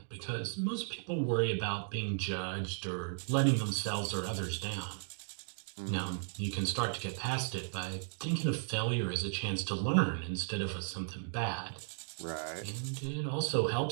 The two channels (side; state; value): left; silent; digital silence